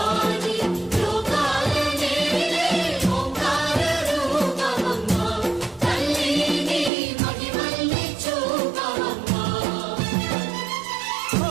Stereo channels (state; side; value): drops out; left; at 6.9 s